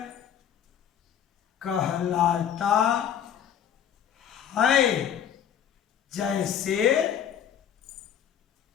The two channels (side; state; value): right; quieter; 9.1 dB